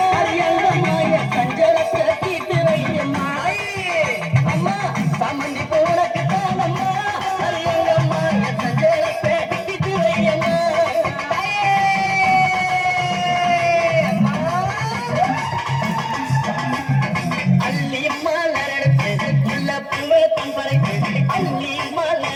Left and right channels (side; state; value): both; identical; correlation 1.00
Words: அரியங்கம்மா என் சஞ்சலத்தை தீர்த்து வையம்மா அம்மா சம்மந்தி போனக்கு தானம்மா அரியங்கம்மா என் சஞ்சலத்தை தீர்த்து வையம்மா அள்ளி மலரெடுத்து உள்ள பூவை தம்பரைக்கு அள்ளி